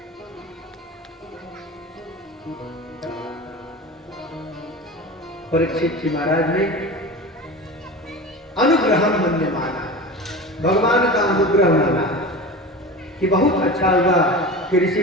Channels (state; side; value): normal; both; correlation 0.31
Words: परीक्षित जी महाराज ने अनुग्रह मन्य माना, भगवान का अनुग्रह माना कि बहुत अच्छा हुआ कि ऋषि